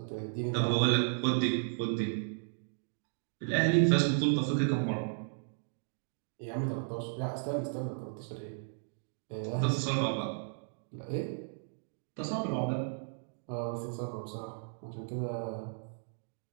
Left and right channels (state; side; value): silent; left; digital silence